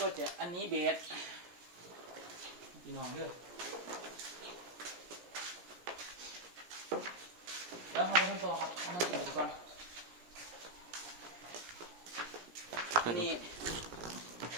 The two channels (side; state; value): left; late; 17 ms